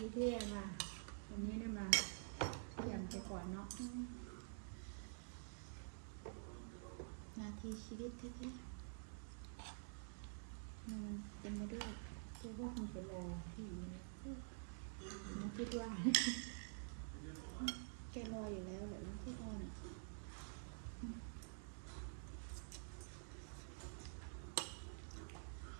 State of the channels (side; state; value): left; silent; digital silence